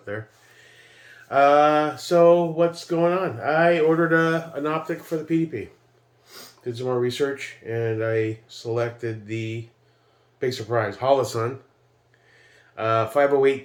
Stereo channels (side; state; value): both; identical; correlation 1.00